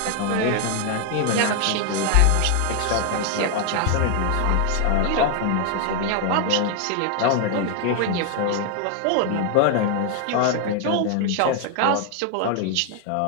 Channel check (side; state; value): both; different; correlation 0.00